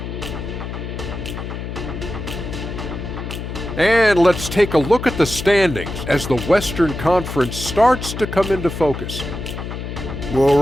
And let's take a look at the standings as the Western Conference starts to come into focus. Well,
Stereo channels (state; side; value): noise; left; hum, 7 dB below the sound